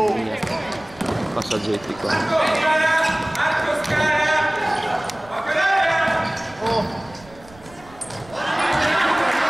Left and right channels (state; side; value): noise; right; rumble, 23 dB below the sound